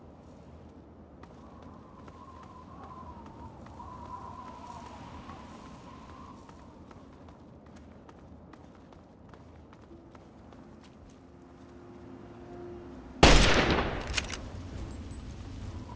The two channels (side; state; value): both; identical; correlation 1.00